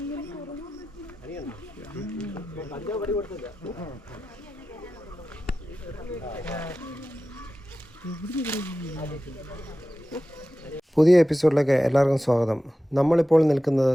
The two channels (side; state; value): both; normal; correlation 0.94